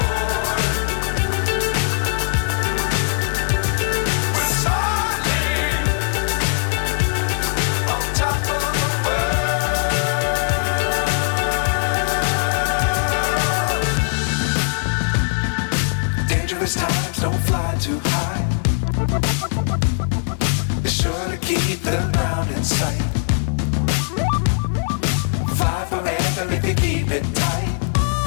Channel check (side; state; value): right; silent; digital silence